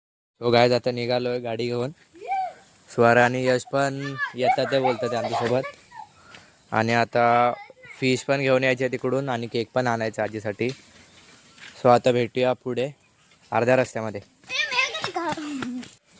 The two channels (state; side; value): identical; both; correlation 1.00